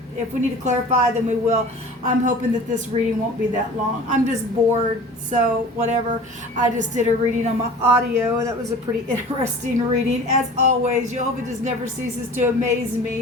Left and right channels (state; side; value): normal; both; correlation 0.41